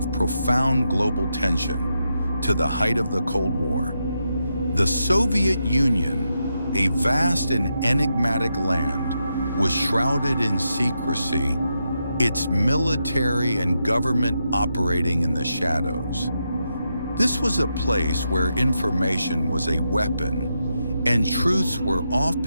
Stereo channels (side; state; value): both; inverted; correlation -0.85